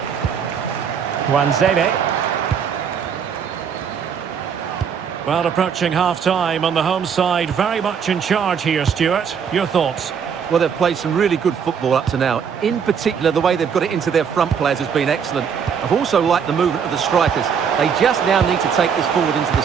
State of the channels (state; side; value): quieter; left; 7.1 dB